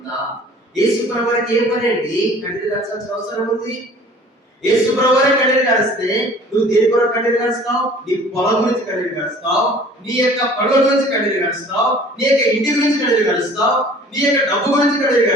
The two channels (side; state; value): both; normal; correlation 0.49